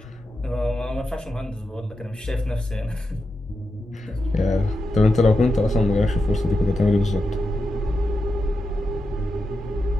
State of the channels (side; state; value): both; normal; correlation 0.88